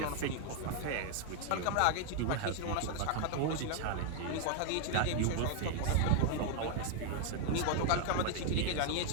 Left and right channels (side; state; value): both; different; correlation 0.00